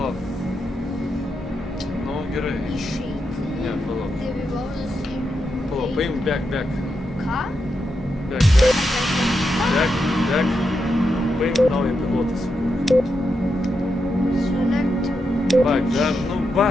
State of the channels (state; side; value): normal; both; correlation 0.85